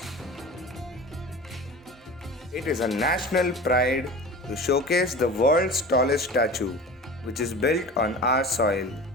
It is a national pride to showcase the world's tallest statue, which is built on our soil,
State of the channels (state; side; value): normal; both; correlation 0.36